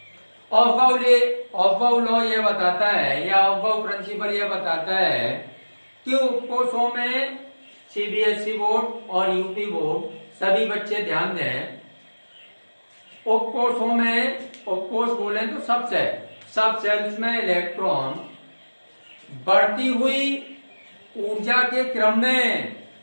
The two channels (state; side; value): inverted; both; correlation -1.00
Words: ऑफबाउ लॉ ये बताता है या ऑफबाउ प्रिंसिपल ये बताता है कि उपकोषों में सीबीएसई बोर्ड और यूपी बोर्ड सभी बच्चे ध्यान दें, उपकोषों में, उपकोष बोले तो सब सेल्स में इलेक्ट्रॉन बढ़ती हुई ऊर्जा के क्रम में,